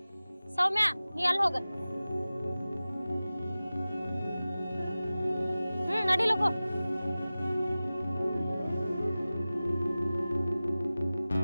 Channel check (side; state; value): both; inverted; correlation -0.97